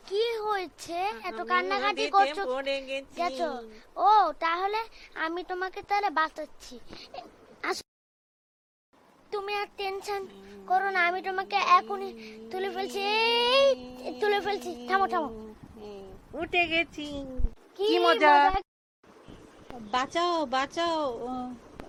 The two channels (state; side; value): identical; both; correlation 1.00